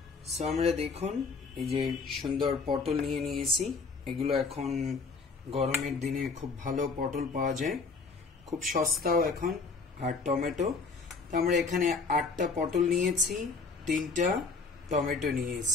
সো আমরা দেখুন এই যে সুন্দর পটল নিয়ে নিয়েছি, এগুলো এখন গরমের দিনে খুব ভালো পটল পাওয়া যায়, খুব সস্তাও এখন। আর টমেটো, তো আমরা এখানে 8টা পটল নিয়েছি, 3টা টমেটো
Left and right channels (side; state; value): right; quieter; 4.3 dB